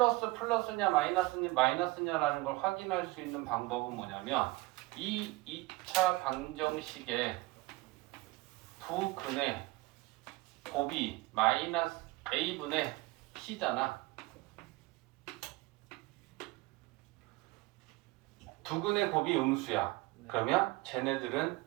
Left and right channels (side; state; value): left; quieter; 21.6 dB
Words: 마이너스냐라는 걸 확인할 수 있는 방법은 뭐냐면 이 2차 방정식의 두 근의 곱이 마이너스 a분의 c잖아. 두 근의 곱이 음수야. 그러면